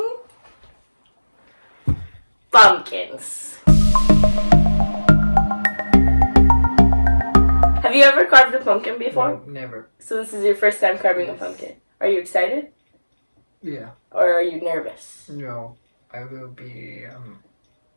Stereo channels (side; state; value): both; inverted; correlation -1.00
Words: pumpkins. Have you ever carved a pumpkin before? No, never. So this is your first time carving a pumpkin. Are you excited? Yeah. Or are you nervous? No, I will be